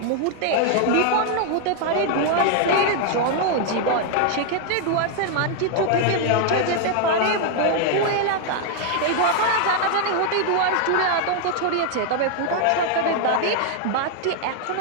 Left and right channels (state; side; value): different; both; correlation 0.00